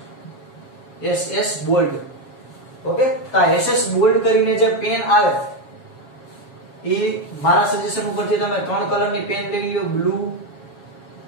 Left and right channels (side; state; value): right; late; 7.3 ms